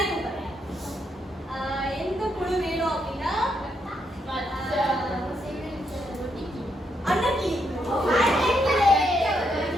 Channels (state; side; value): normal; both; correlation 0.78